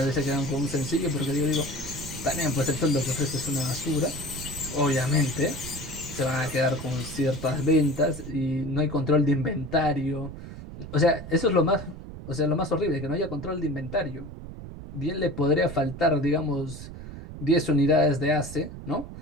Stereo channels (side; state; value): right; noise; rumble, 11 dB below the sound